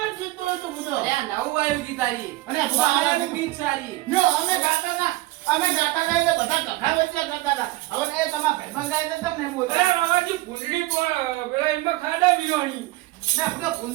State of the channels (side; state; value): left; quieter; 19.0 dB